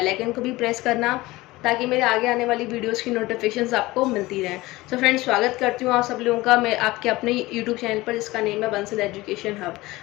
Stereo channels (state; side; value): quieter; right; 19.7 dB